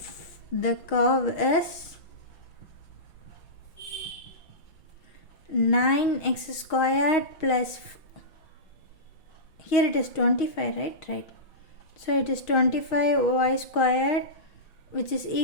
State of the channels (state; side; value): late; right; 5.9 ms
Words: the curve is 9x squared plus, here it is 25, right? Right. So it is 25y squared, which is